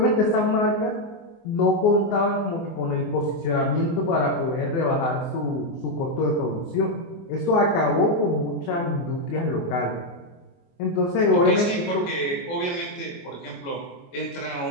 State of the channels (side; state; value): right; late; 24 ms